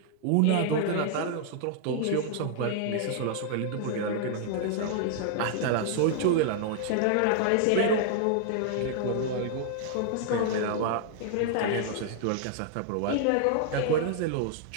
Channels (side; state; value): both; different; correlation 0.00